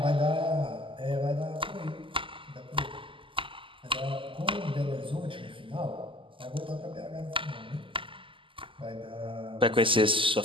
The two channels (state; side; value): late; left; 0.25 ms